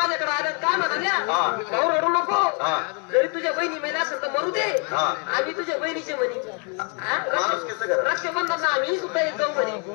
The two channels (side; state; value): right; quieter; 36.0 dB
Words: आल्या. काय म्हणाल्या? भाऊ रडू नको. जरी तुझ्या बहिणी मेल्या असेल तर मरू दे, आम्ही तुझ्या बहिणीचे म्हणे. माणुसकीचं घर. रक्षाबंधन आम्ही सुद्धा येत जाऊ म्हणे.